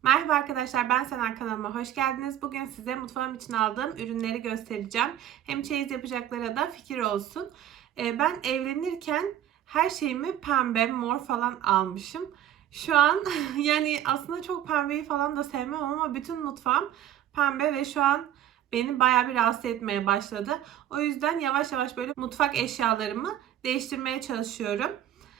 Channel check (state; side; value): quieter; left; 11.5 dB